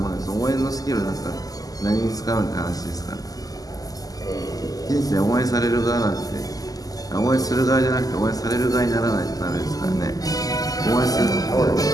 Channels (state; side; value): late; right; 0.17 ms